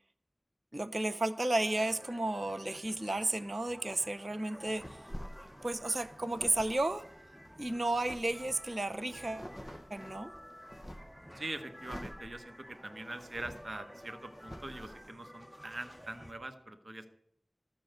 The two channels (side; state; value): both; normal; correlation 0.96